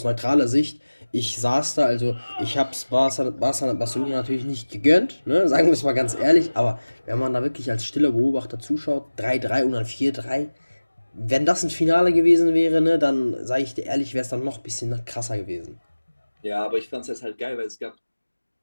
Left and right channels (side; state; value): both; inverted; correlation -1.00